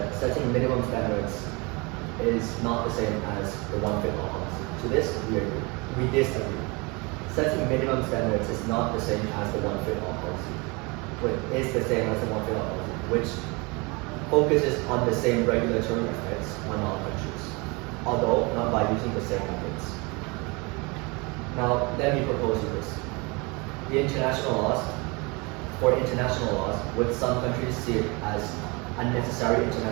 setting minimum standards is not the same as the one-fit-all policy. To this, we agree. We disagree. Setting minimum standards is not the same as the one-fit-all policy. But is the same as the one-fit-all policy, which focuses on the same regulatory effects on all countries, although not by using the same methods. Now, let me propose you this. For international laws, would some countries see it as unnecessary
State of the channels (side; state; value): left; quieter; 27.7 dB